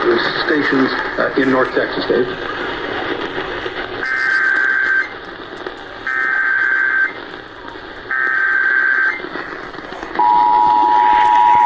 stations in North Texas, Dave.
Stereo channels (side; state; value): both; identical; correlation 1.00